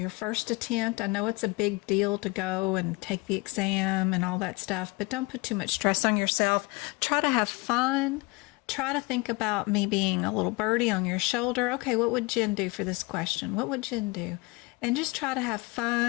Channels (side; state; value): right; quieter; 25.4 dB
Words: first attempt. I know it's a big deal to go and take the exam and all that stuff, but don't put too much stress on yourself. Try to have fun. Try to think about me being a little birdie on your shoulder. Okay, what would Jen do for this question? What would Jen do? And just try to have